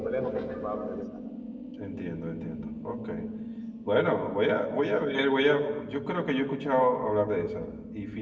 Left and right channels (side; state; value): both; identical; correlation 1.00